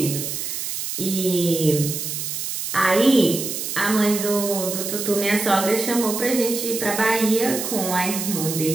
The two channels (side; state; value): right; noise; hiss, 4 dB below the sound